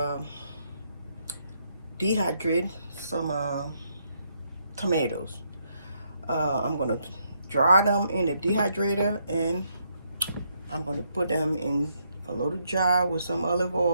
dehydrate some tomatoes. I'm gonna dry them in the dehydrator and I'm gonna put them in a little jar with some olive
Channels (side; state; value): both; inverted; correlation -0.76